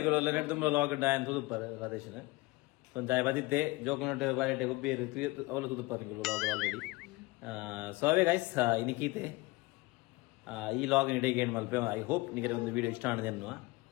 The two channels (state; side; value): quieter; right; 22.1 dB